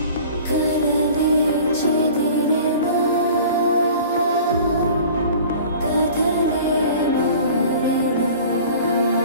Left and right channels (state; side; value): inverted; both; correlation -0.44